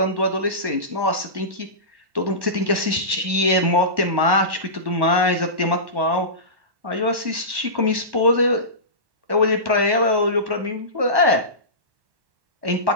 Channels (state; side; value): late; left; 1.1 ms